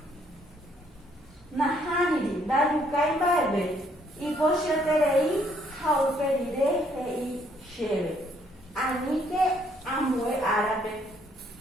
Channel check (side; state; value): both; normal; correlation 0.67